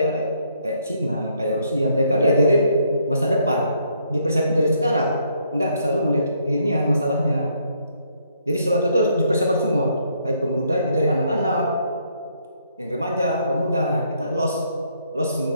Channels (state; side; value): inverted; both; correlation -0.70